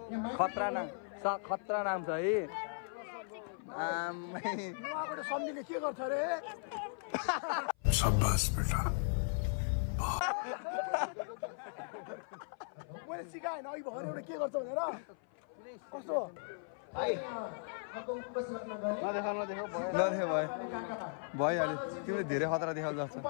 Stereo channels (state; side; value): silent; right; 53 dB below the other